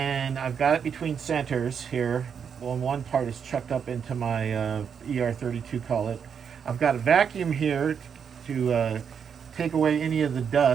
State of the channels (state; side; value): quieter; left; 7.1 dB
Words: I've got it between centers here. Well, one part is chucked up into my ER32, call it. I've got a vacuum here to take away any of the